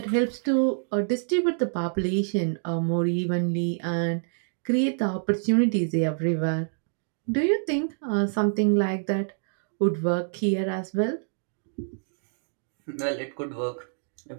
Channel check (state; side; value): silent; left; digital silence